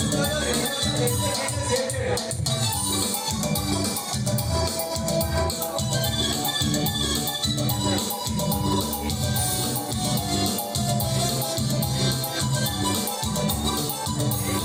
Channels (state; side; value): identical; both; correlation 1.00